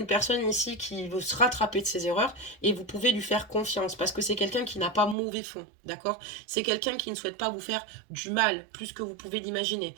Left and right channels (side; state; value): left; drops out; at 5.2 s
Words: personne ici qui veut se rattraper de ses erreurs et vous pouvez lui faire confiance parce que c'est quelqu'un qui n'a pas mauvais fond, d'accord? C'est quelqu'un qui ne souhaite pas vous faire du mal plus que vous pouvez l'imaginer.